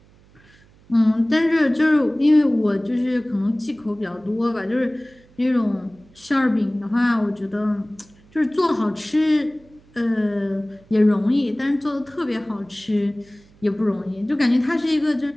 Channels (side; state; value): right; noise; hum, 28 dB below the sound